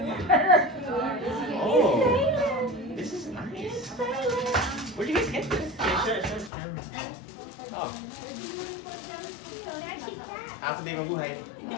Oh. This is nice. Where'd you guys get this? Oh. Happy day mabuhay.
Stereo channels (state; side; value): drops out; right; at 6.5 s